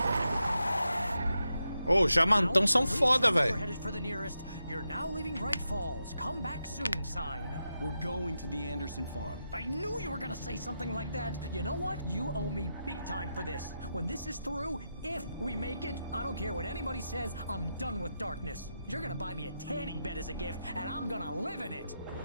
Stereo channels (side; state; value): both; inverted; correlation -0.87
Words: Ô, jamantão são foda, velho. You're now leaving Bright Falls. Come back soon, sign. We're going to the Anderson farm. I knew you were gonna say something like that. You know what? You owe me big time for this. When this is through, if we make it, I don't care what anybody says, I'm done with darkness. You're gonna buy me a tanning bed as a gift, and I'm gonna live in it.